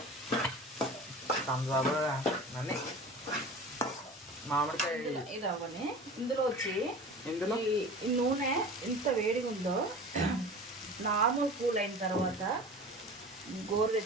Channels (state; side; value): normal; both; correlation 0.37